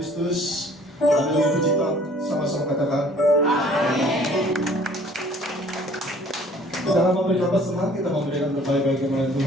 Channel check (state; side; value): normal; both; correlation 0.54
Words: haleluya, puji Tuhan. Sama-sama katakan. Kita akan memberikan pesanan, kita memberikan berbagai-bagai kemuliaan